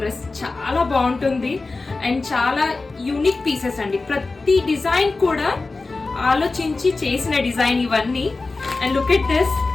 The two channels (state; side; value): quieter; right; 3.6 dB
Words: చాలా బాగుంటుంది. అండ్ చాలా యూనిక్ పీసెస్ అండి. ప్రతి డిజైన్ కూడా ఆలోచించి చేసిన డిజైన్ ఇవన్నీ. And look at this